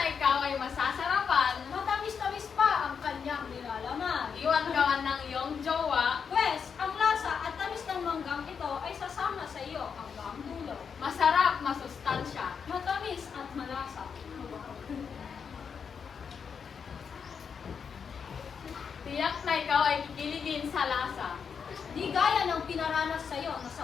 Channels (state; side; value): quieter; right; 6.5 dB